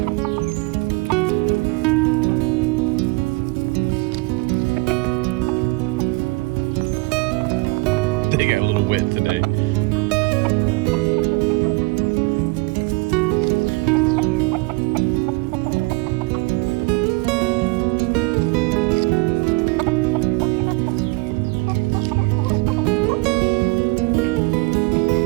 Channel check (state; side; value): quieter; left; 26.1 dB